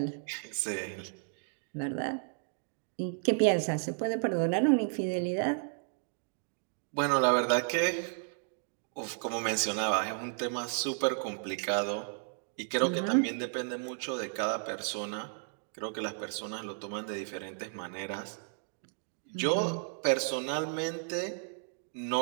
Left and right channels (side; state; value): left; silent; digital silence